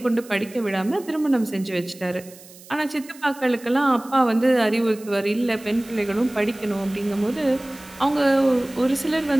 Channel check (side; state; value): right; noise; hiss, 21 dB below the sound